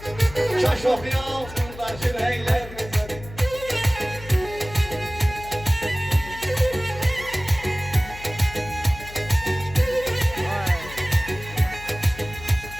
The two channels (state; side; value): noise; left; hum, 15 dB below the sound